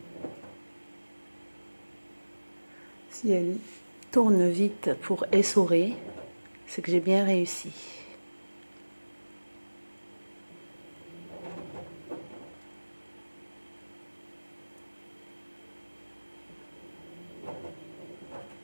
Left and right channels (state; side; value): inverted; both; correlation -1.00